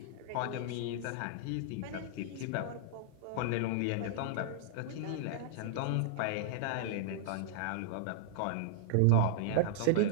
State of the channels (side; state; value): both; different; correlation -0.02